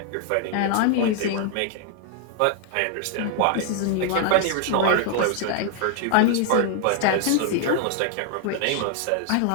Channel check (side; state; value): both; different; correlation 0.00